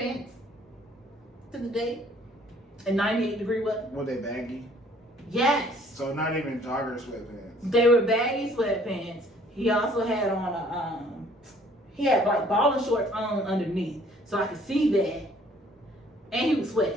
to the date and 98-degree weather. Were they baggy? Yes. So not even jogger sweatpants. They were baggy sweatpants. He also had on he had like balling shorts on underneath, so I could see that. And he was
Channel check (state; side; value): normal; both; correlation 0.59